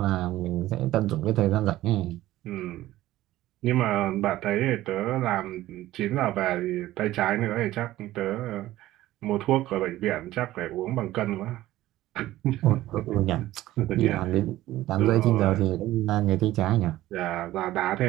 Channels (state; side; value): quieter; left; 15.5 dB